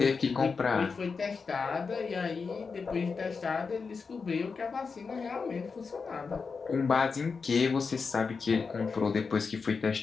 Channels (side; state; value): right; quieter; 5.0 dB